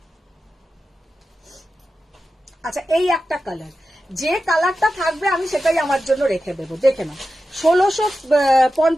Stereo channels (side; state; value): both; normal; correlation 0.92